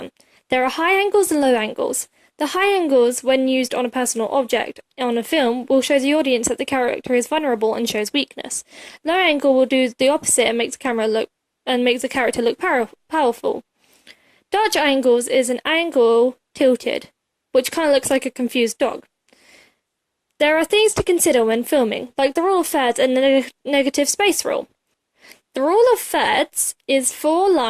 There are high angles and low angles. The high angles, when used on a personal object on a film, will show the audience that the character is vulnerable and shows weakness. Low angle will do the opposite and makes the character look powerful. Dutch angles is an angle tilted, which kind of looks like a confused dog. There are things to consider when filming, like the rule of thirds and the negative space rule. The rule of thirds is 4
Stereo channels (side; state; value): both; identical; correlation 1.00